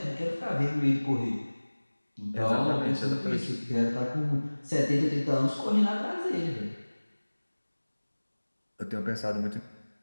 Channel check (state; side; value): inverted; both; correlation -1.00